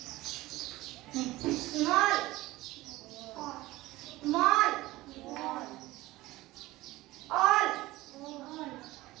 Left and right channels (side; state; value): left; quieter; 18.2 dB